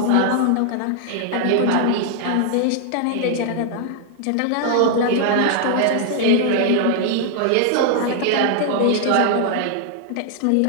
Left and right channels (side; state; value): both; different; correlation 0.00